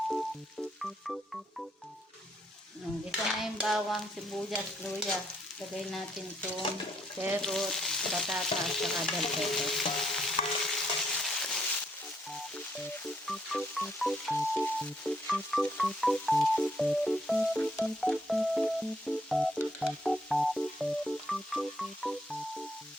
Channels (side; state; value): both; normal; correlation 0.73